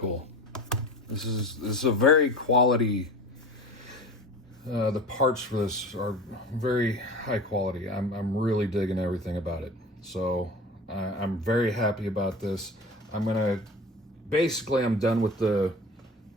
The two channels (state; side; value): normal; both; correlation 0.35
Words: This is a very quality. The parts for this are very high quality. I'm really digging everything about it. So I'm very happy about this. I'm done with the